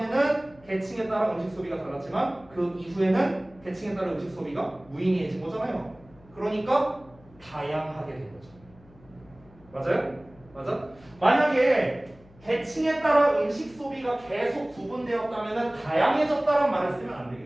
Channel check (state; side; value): noise; left; hum, 26 dB below the sound